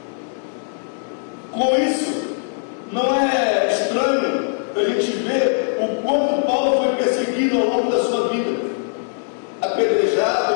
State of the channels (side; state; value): right; silent; digital silence